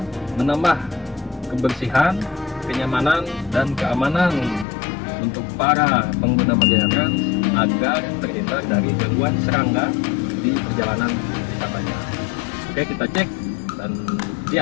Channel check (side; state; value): right; drops out; at 4.7 s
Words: menambah kebersihan, kenyamanan, dan keamanan untuk para pengguna Marjaya Trans agar terhindar dari gangguan serangga di perjalanan wisatanya. Oke, kita cek dan